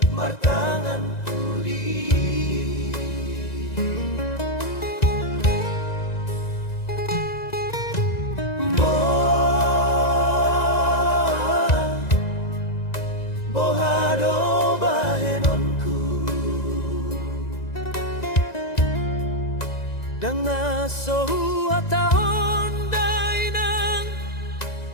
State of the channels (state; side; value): late; right; 1.9 ms